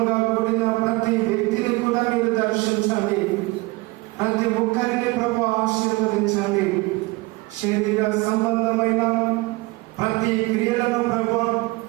కూడిన ప్రతి వ్యక్తిని కూడా మీరు దర్శించండి. ప్రతి ఒక్కరిని ప్రభు ఆశీర్వదించండి. శరీర సంబంధమైన ప్రతి క్రియలను ప్రభు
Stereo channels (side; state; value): left; quieter; 23.4 dB